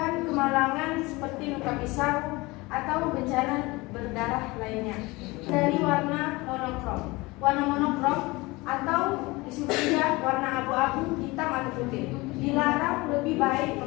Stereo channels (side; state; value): right; quieter; 22.8 dB